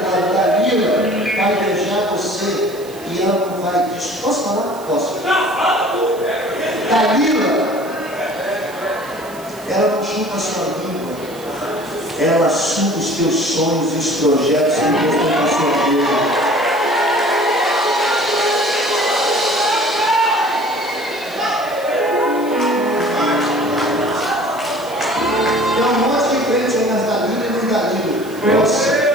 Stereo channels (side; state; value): right; noise; hiss, 20 dB below the sound